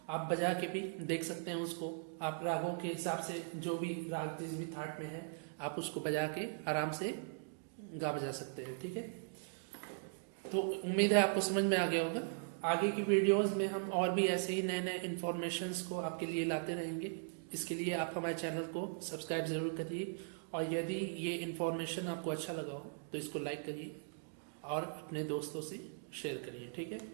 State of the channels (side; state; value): left; silent; digital silence